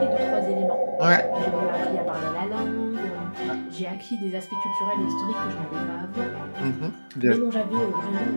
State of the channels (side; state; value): both; inverted; correlation -1.00